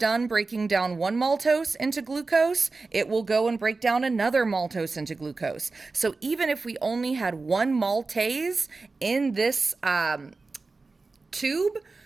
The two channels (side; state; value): left; quieter; 3.8 dB